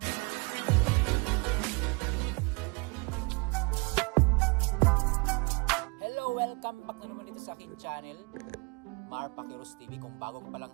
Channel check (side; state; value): left; quieter; 29.9 dB